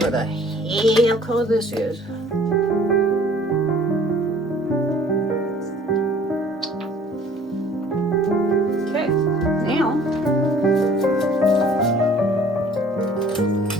the hell color this is. Okay, now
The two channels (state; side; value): normal; both; correlation 0.53